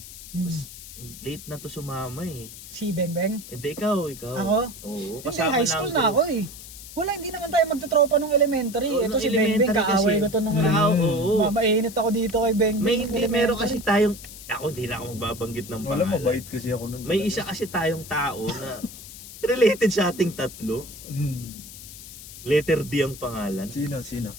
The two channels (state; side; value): noise; left; hiss, 14 dB below the sound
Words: Mas, late na to sumama eh. Si Beng. Hindi, ikaw. Ako? Oo, Hindi, high school na ako eh. Wala, hindi naman tayo magtutropa nung elementary. Oo, Ito nung si Beng, elementary kaaway kasi. ko to nung Oo, elementary. oo. Mainit ako dito kay Beng. Meron kasi tayong, hindi na ako magbabanggit ng Wala, pangalan. mabait kasi ako nun. May isa kasi tayong tao na related sa ating tatlo. Letter D ang pangalan. Sino?